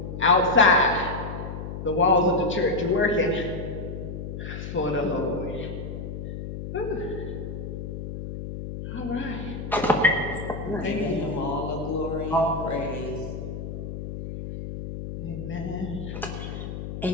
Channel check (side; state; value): left; noise; hum, 7 dB below the sound